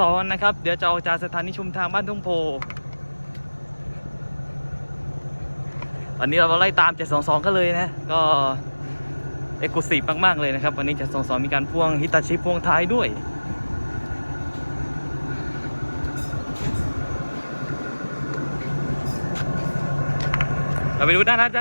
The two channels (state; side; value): inverted; both; correlation -1.00